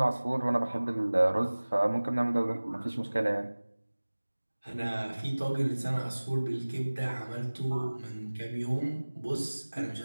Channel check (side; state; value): both; inverted; correlation -1.00